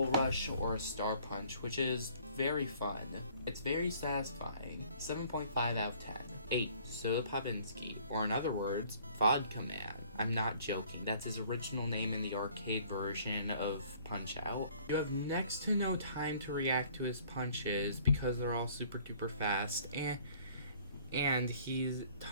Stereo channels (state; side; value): inverted; both; correlation -0.56